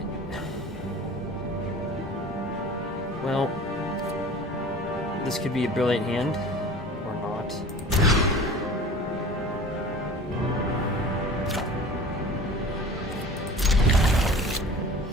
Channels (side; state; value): both; normal; correlation 0.41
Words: Well, this could be a brilliant hand, or not.